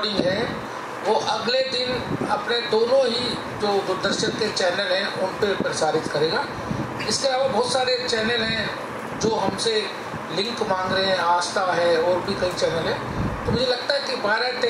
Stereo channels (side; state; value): both; identical; correlation 1.00